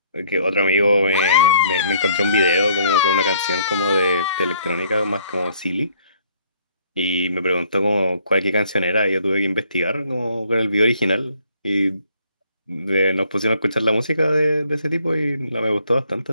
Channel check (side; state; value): both; inverted; correlation -0.64